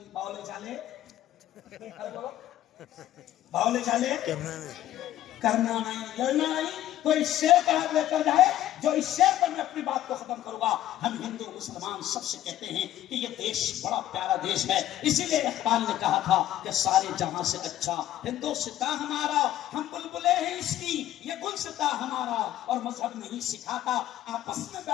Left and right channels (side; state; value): right; quieter; 12.9 dB